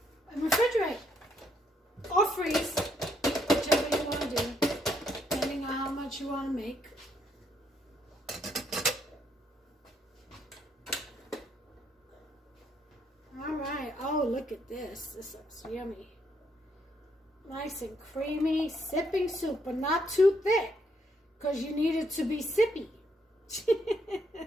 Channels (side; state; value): both; normal; correlation 0.73